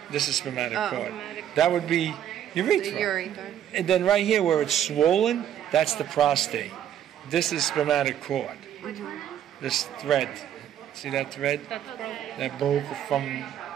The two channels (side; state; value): left; quieter; 10.4 dB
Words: This is spermatic cord. That would be urethra. The urethra. And then right here where it's swollen, that's the prostate. This is spermatic cord. This thread. See that thread? That's broken. That broke from,